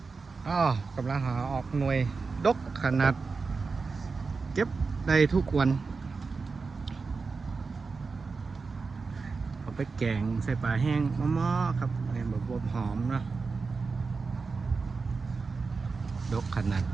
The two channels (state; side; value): quieter; left; 4.5 dB